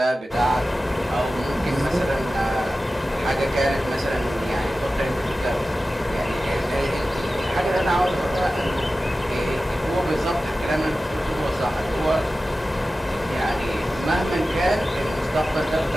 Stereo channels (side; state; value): both; normal; correlation 0.95